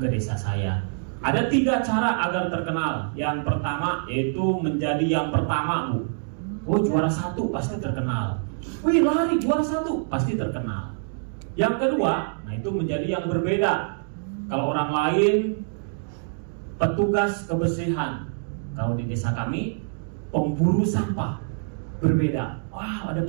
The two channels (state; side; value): silent; left; digital silence